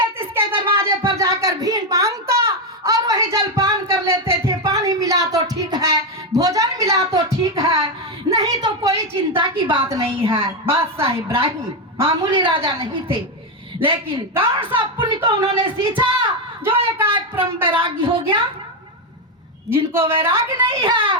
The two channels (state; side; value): normal; both; correlation 0.06